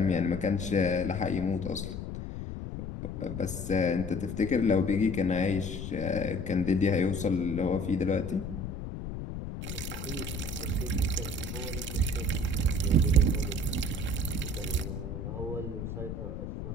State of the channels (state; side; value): noise; left; rumble, 6 dB below the sound